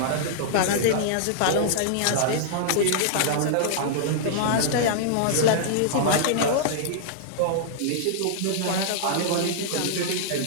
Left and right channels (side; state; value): both; different; correlation -0.02